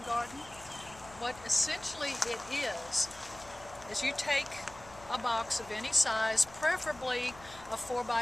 garden. What essentially it is you take a box of any size, preferably a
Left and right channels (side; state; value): left; noise; hum, 20 dB below the sound